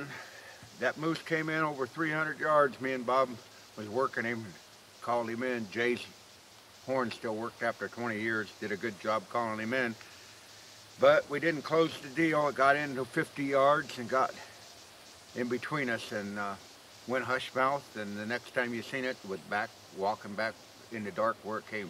That moose came in over 300 yards. Me and Bob was working him, called him in. Jay's horn still worked after 20 years, did a good job calling him in. But we didn't close the deal. It got into 50 yards and got in between us and went hush mouth. And the next time you seen it was walking back in the dark where it came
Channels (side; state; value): both; identical; correlation 1.00